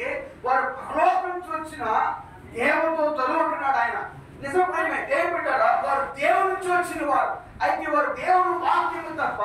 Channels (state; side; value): identical; both; correlation 1.00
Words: వారు పరలోకం నుంచి వచ్చిన దేవదూతలు ఉంటున్నాడు ఆయన. నిజమే దేవుడారా వారు దేవుడి నుంచి వచ్చిన వారు. అయితే వారు దేవుడు వాక్యము తప్ప